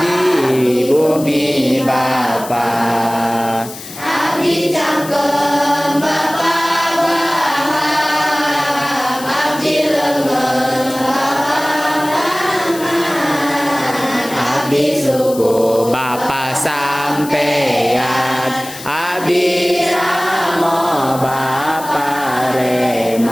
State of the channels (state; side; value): noise; left; hiss, 14 dB below the sound